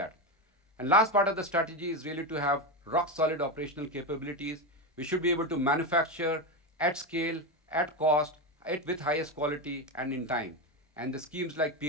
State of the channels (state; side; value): normal; both; correlation 0.14